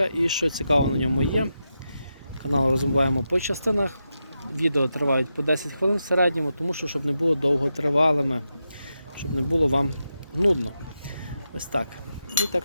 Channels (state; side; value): inverted; both; correlation -0.88